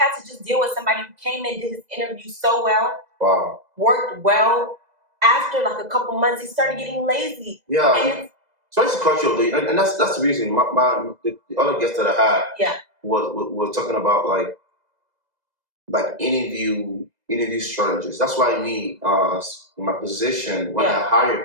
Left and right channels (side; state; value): left; late; 2.0 ms